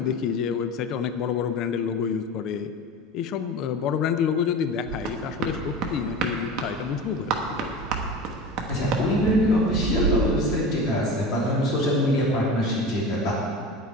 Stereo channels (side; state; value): both; normal; correlation 0.31